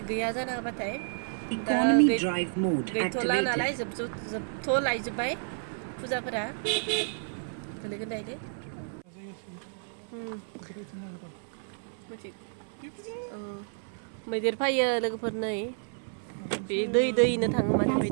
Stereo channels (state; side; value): silent; left; 57 dB below the other